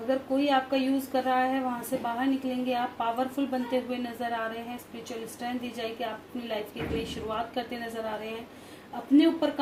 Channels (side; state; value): both; identical; correlation 1.00